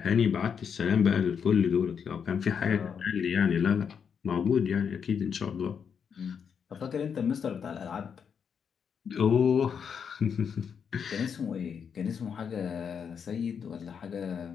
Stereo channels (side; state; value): right; quieter; 7.0 dB